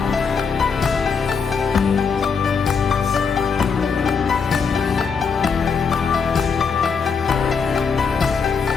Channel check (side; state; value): right; quieter; 5.7 dB